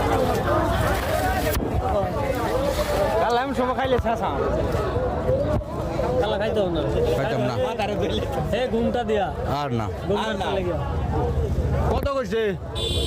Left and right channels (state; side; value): identical; both; correlation 1.00